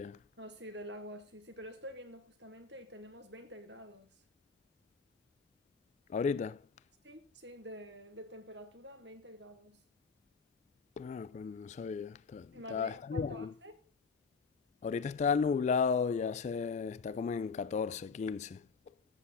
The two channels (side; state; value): right; quieter; 5.1 dB